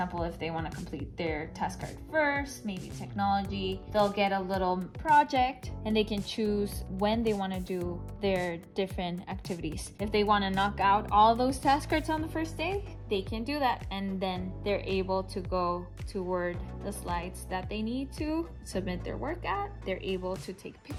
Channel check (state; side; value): identical; both; correlation 1.00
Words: if they want to complete their task card first, maybe technology, they'll get a little project and they can choose when they want to do their different activities. If they want to knock out all those task cards on the first day, they can do that, and then they're able to go toward the slides that they need to submit their work at. They're able to take